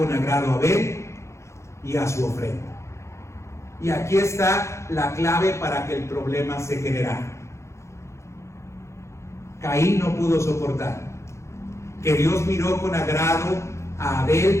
agrado a Abel y a su ofrenda. Y aquí está la clave para que el problema se generara. Caín no pudo soportar que Dios miró con agrado a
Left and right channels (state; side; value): late; right; 0.14 ms